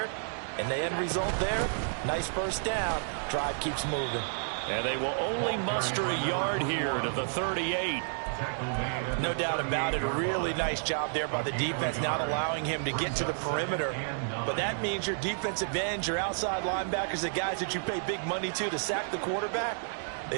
And the end result there, nice first down. Drive keeps moving. And they will only muster a yard here to the 38. No doubt about it. A really nice job there by the defense, not allowing him to get to the perimeter. But that means your defensive ends, your outside linebackers, the guys that you pay big money to sack the quarterback, they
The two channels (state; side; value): silent; left; digital silence